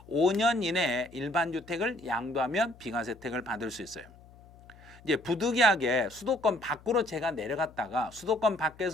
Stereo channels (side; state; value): left; noise; hum, 23 dB below the sound